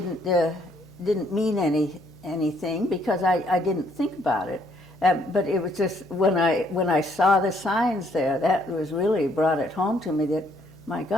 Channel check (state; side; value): noise; left; hum, 27 dB below the sound